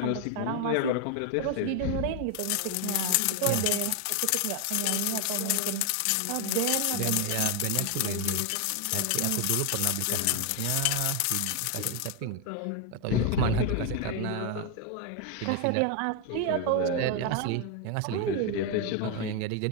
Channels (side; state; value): both; different; correlation 0.01